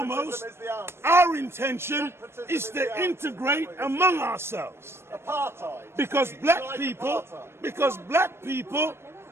our intention is to integrate among ourselves. Apartheid. Because You black like people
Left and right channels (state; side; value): late; left; 0.12 ms